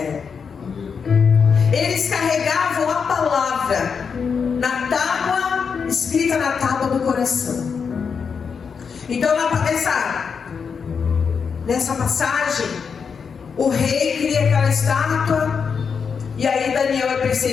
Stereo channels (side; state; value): right; quieter; 6.1 dB